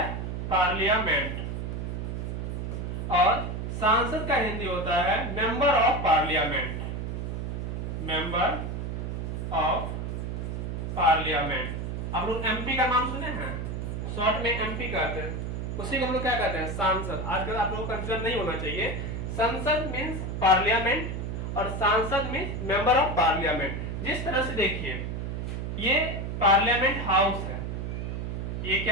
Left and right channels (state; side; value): noise; right; hum, 4 dB below the sound